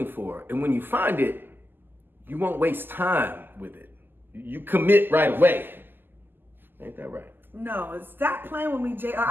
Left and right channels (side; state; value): left; late; 0.094 ms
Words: for. And when you find it, you won't waste time with it. You commit right away. Ain't that right? No, stop playing with me, JR.